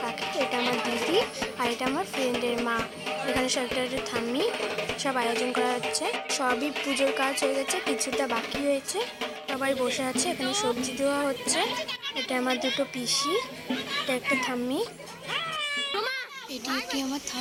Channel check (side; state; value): both; identical; correlation 1.00